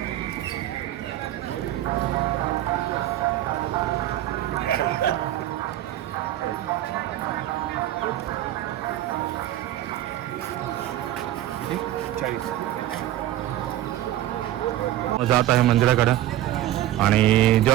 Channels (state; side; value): quieter; left; 13.5 dB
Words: जात आहे मंदिराकडं. आणि